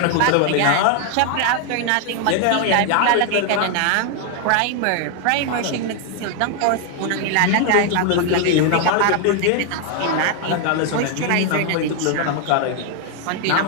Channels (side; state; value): both; different; correlation 0.01